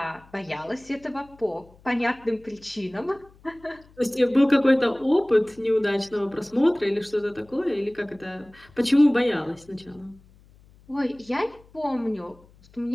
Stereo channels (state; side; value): noise; left; hum, 27 dB below the sound